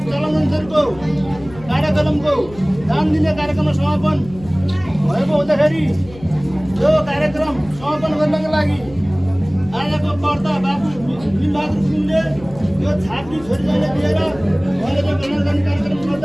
चलन अनुसारको कार्यक्रमको दान दिने कार्यक्रममा समापन भएको हुँदाखेरि यो कार्यक्रम समापन गर्नको लागि आजको कर्ता बाबु बिलबहादुर गुरुङले यो छात्री छोरीलाई दिएर उहाँले जो कल्याण गर्ने कार्यक्रम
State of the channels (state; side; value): noise; left; hum, 18 dB below the sound